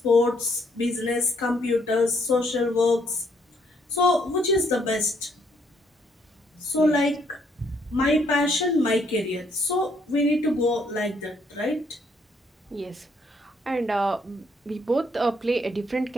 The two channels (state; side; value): normal; both; correlation 0.69